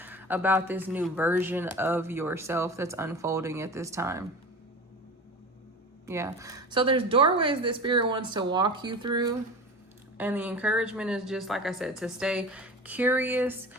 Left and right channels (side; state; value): both; normal; correlation 0.33